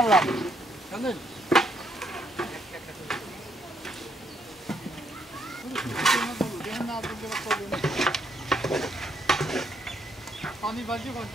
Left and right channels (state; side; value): normal; both; correlation 0.72